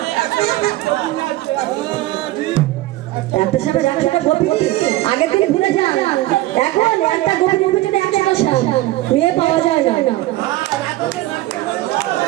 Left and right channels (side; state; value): left; quieter; 16.9 dB